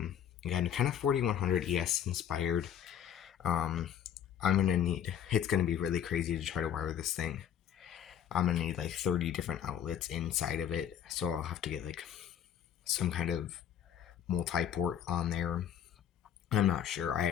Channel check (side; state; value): right; quieter; 9.5 dB